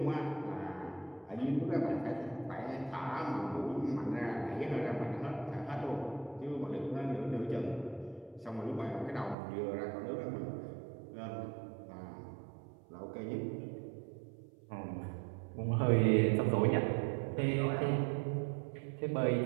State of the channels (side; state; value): left; drops out; at 9.3 s